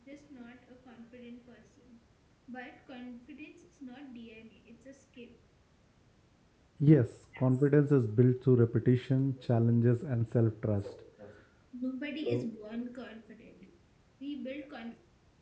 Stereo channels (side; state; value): both; identical; correlation 1.00